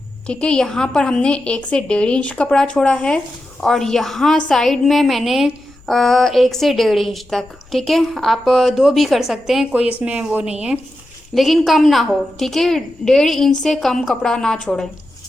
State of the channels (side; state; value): left; noise; rumble, 28 dB below the sound